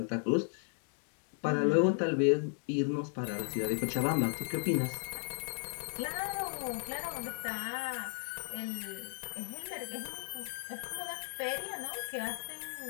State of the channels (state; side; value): silent; right; 54 dB below the other